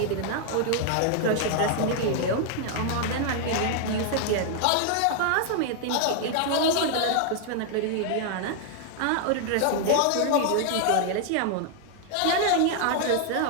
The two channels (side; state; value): both; different; correlation 0.00